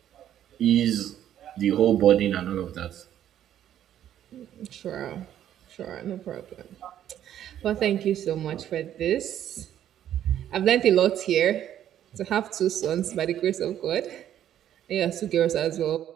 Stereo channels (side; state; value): left; quieter; 11.0 dB